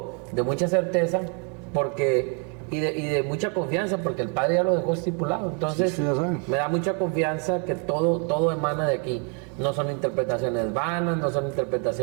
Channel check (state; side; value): quieter; left; 38.4 dB